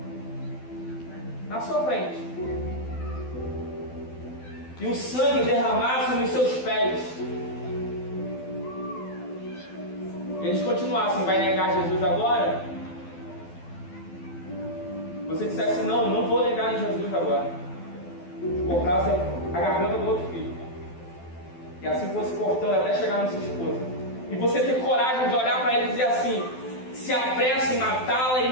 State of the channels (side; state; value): right; late; 12 ms